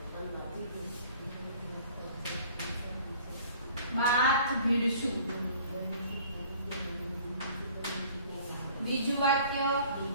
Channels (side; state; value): both; inverted; correlation -0.51